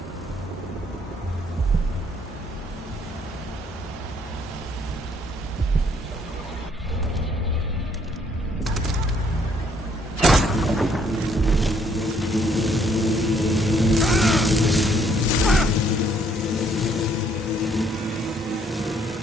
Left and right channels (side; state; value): both; normal; correlation 0.66